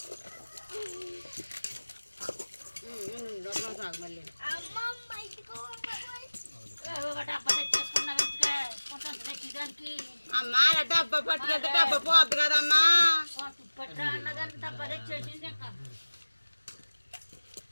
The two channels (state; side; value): inverted; both; correlation -1.00